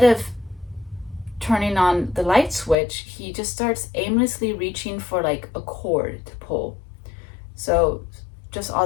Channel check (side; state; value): right; drops out; at 2.8 s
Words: of turning on the light switch, he just starts aimlessly reaching for like a cord to pull. So just